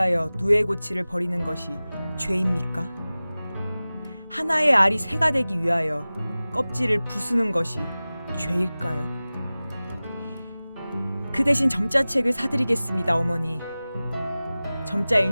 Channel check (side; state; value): both; inverted; correlation -0.98